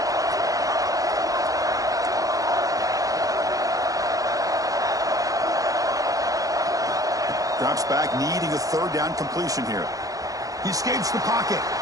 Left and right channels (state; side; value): late; left; 0.17 ms